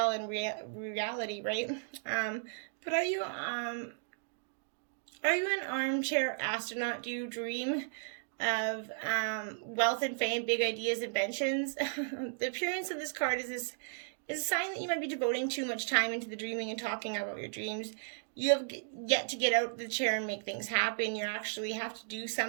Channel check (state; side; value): silent; left; digital silence